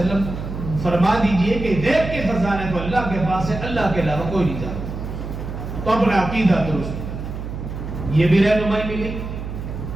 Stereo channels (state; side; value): noise; right; hum, 7 dB below the sound